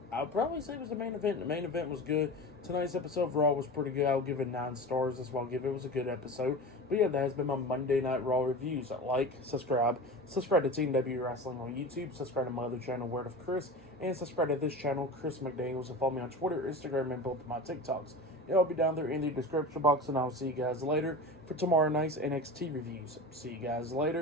I'll probably say it was the main event. The main event was good. Tonight's episode of Raw was pretty good. I'll give it 9 stars. That's what I'll give it. It was a good episode. But yeah, that has been my Monday Night Raw reviews. Like, subscribe to Team W Wrestling on YouTube. Subscribe to my other channel, Word of Chris. And subscribe to this channel, Chris McDaniels. And follow me on Twitter, Instagram, and both of my TikToks. It'll be down there in the description box. And I'll see you guys later for tomorrow night's NXT reviews. See you guys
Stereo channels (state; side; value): normal; both; correlation 0.31